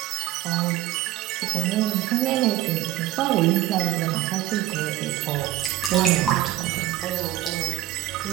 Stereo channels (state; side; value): quieter; left; 14.5 dB